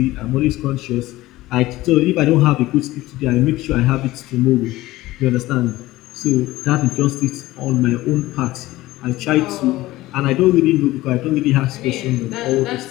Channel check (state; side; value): quieter; right; 17.5 dB